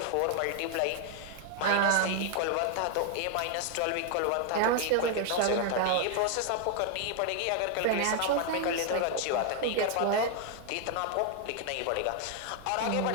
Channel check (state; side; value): different; both; correlation 0.00